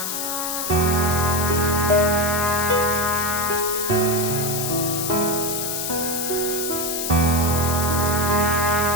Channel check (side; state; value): left; noise; hiss, 2 dB below the sound